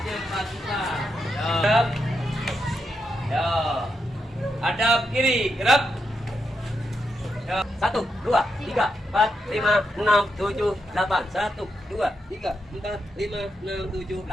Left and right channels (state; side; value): normal; both; correlation 0.83